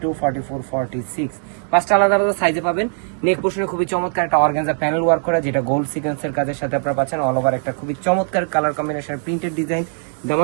44, 46, পাঁচটা আলাদা আলাদা সাইজে পাবেন। নেক পোর্শনে খুবই চমৎকার একটা অর্গানজা প্যানেল ওয়ার্ক করা, যেটা গোল্ড সিকোয়েন্সের কাজের সাথে আপনারা পাচ্ছেন। অল ওভার একটা খুবই চমৎকার কালার কম্বিনেশন প্রিন্টেড ডিজাইন।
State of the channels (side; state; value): left; silent; 62 dB below the other